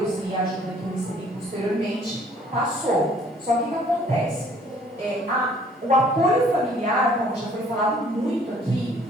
e a ajuda que eu recebi posteriormente, passou. Só que o que acontece? O apoio familiar, como já foi falado muito aqui,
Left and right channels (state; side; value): normal; both; correlation 0.58